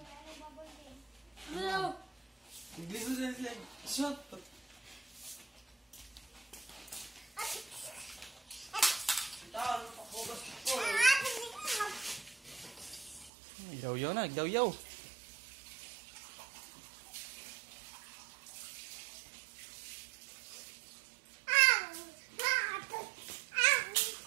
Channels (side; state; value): left; drops out; at 13.3 s